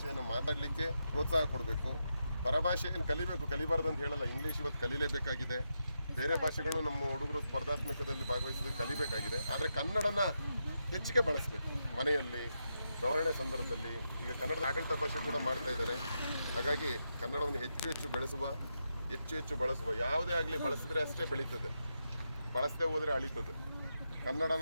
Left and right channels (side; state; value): both; inverted; correlation -0.85